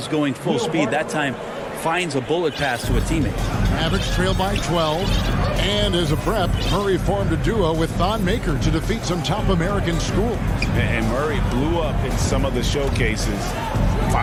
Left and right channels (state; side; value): identical; both; correlation 1.00